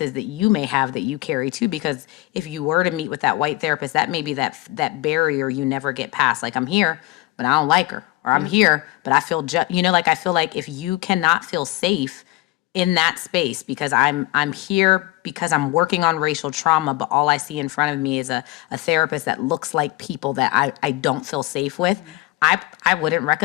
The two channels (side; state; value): right; quieter; 18.8 dB